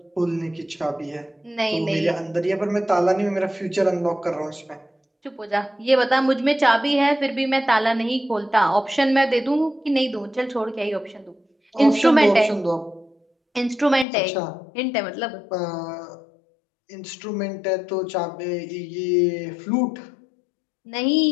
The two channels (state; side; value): drops out; right; at 14.1 s